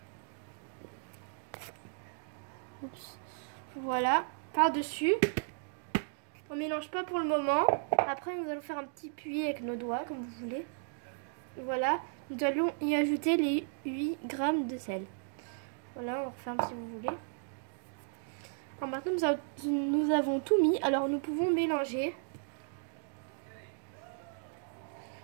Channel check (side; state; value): left; silent; digital silence